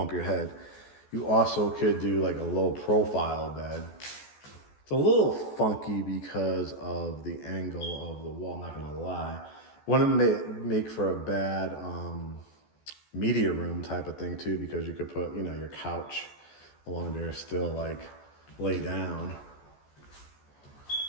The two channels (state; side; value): late; right; 14 ms